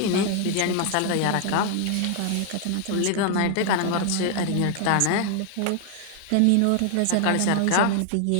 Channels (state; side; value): different; both; correlation 0.00